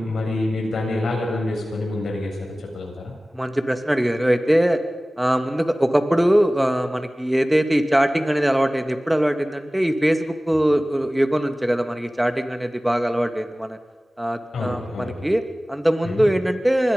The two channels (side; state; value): both; normal; correlation 0.97